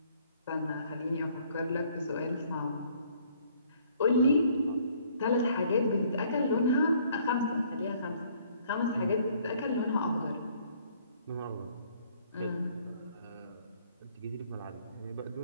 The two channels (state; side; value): inverted; both; correlation -0.61